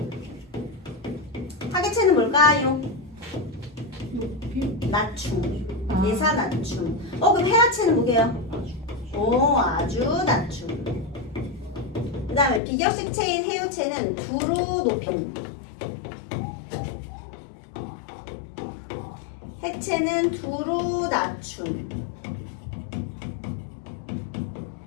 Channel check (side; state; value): right; drops out; at 12.6 s